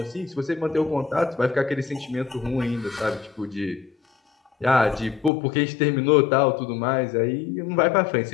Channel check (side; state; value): right; drops out; at 5.3 s